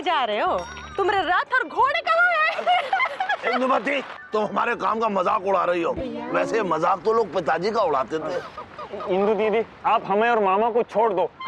जा रहे हो? तुम्हारे रथ और घोड़े कहाँ हैं? इंदुमती, तुम हमारे काम का मजाक उड़ा रही हो। वैसे मजाक तो लोग पिताजी का उड़ाते थे। इंदु दीदी, आप हमें और मामा को छोड़ दो,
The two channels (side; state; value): both; identical; correlation 1.00